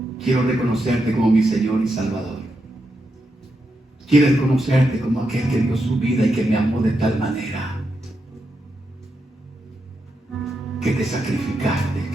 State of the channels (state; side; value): normal; both; correlation 0.85